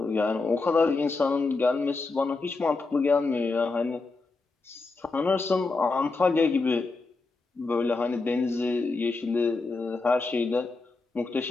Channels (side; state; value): right; quieter; 3.7 dB